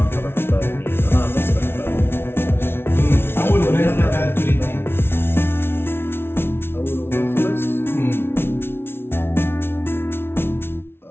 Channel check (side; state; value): right; late; 0.11 ms